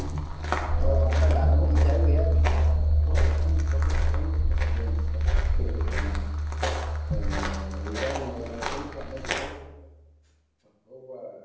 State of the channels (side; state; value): both; identical; correlation 1.00